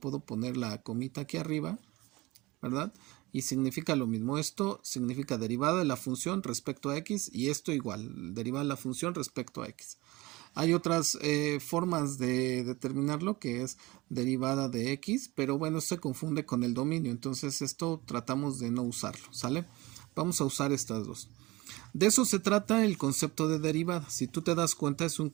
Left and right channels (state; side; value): quieter; left; 21.4 dB